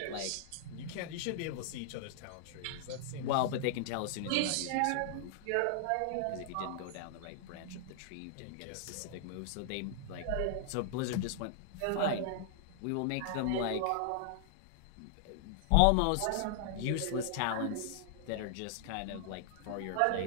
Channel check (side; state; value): both; different; correlation -0.01